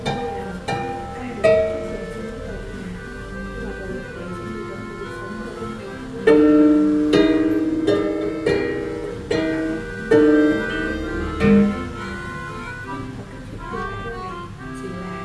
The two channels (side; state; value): both; identical; correlation 1.00